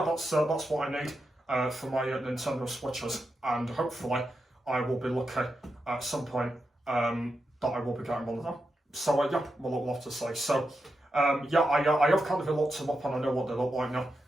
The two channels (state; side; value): normal; both; correlation 0.87